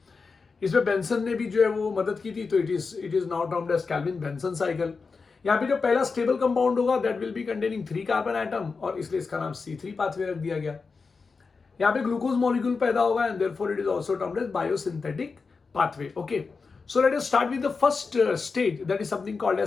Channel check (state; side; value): quieter; right; 4.7 dB